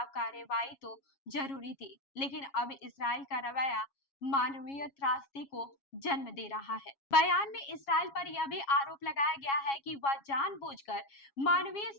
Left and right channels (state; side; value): late; right; 7.3 ms